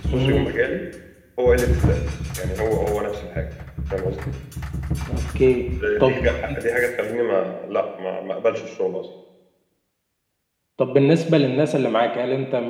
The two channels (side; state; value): both; identical; correlation 1.00